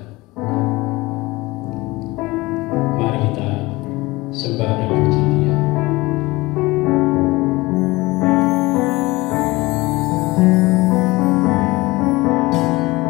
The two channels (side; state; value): right; quieter; 21.4 dB